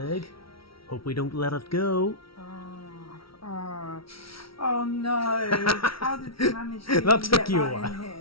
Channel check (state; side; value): late; right; 0.75 ms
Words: Hope we don't let it go. Oh no! How did you manage to that took get you that a while. in